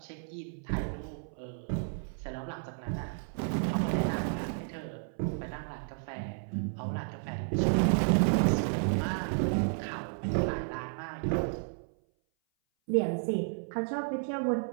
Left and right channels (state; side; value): silent; left; 56 dB below the other